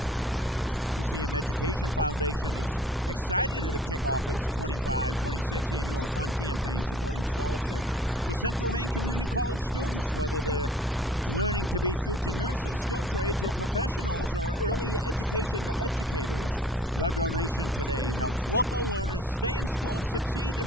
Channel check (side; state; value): both; normal; correlation 0.51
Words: The CM Education Foundation is excited to kick off its 25-26 annual fund campaign supporting scholarships for Central Maine Community College students, whether they're learning to be future nurses, skilled trades, or professionals, or early education educators. Your donation today helps local learners stay in school, succeed,